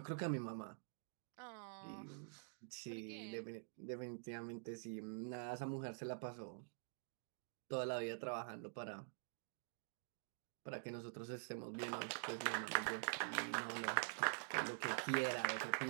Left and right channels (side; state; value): left; silent; digital silence